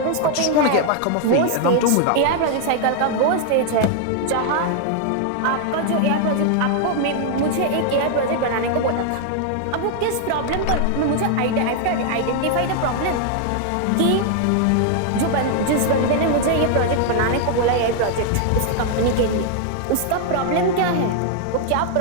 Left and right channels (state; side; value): different; both; correlation 0.00